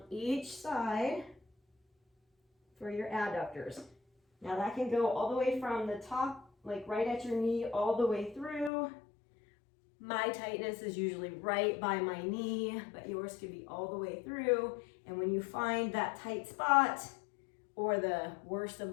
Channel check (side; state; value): right; drops out; at 8.7 s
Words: each side for your adductors. Now that can go all the way from the top, like right at your knee, all the way through. My tightness is usually right by my knee, but yours could be all the way through. And when you find that tight spot, or the worst of